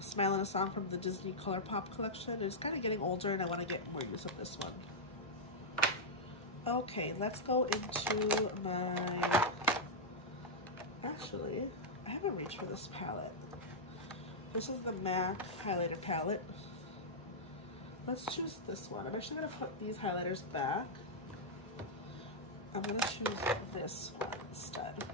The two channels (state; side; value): normal; both; correlation -0.06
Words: Smile in a Song from the Disney ColourPop collection. It's kind of getting older and I wanna get more use of this one. Okay, let's go into my, actually, I haven't reached for this palette. This is the MAC highlighter palette. Let's choose this one. I'm actually gonna put these highlighters back. I'm gonna choose this one instead.